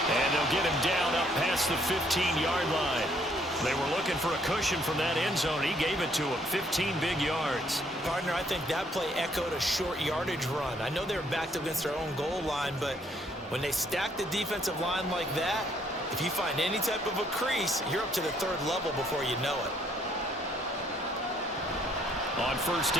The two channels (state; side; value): normal; both; correlation 0.67